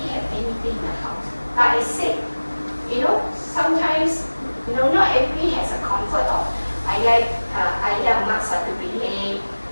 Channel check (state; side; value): inverted; both; correlation -1.00